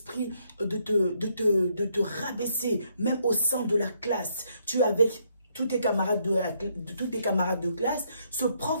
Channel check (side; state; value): both; inverted; correlation -0.73